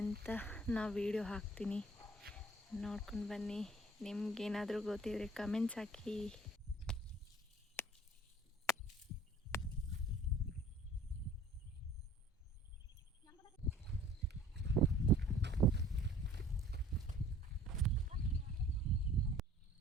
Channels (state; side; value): normal; both; correlation 0.50